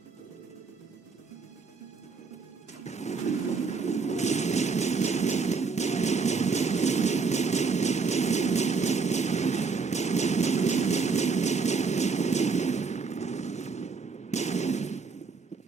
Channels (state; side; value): quieter; left; 4.8 dB